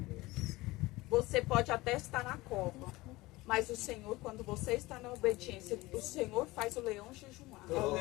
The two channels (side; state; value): right; quieter; 20.3 dB